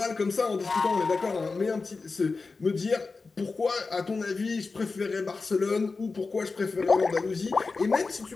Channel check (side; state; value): right; quieter; 4.1 dB